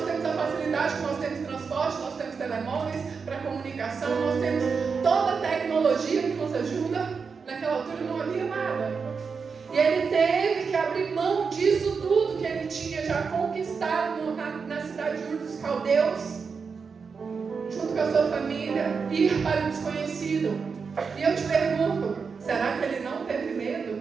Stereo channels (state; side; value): quieter; left; 5.4 dB